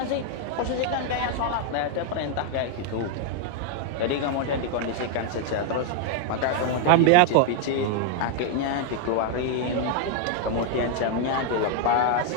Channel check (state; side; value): different; both; correlation 0.00